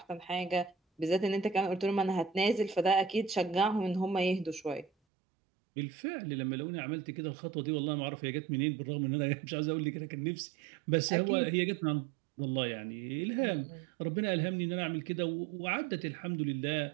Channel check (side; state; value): left; drops out; at 4.9 s